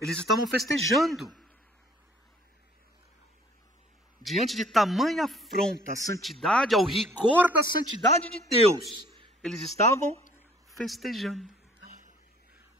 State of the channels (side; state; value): both; normal; correlation 0.56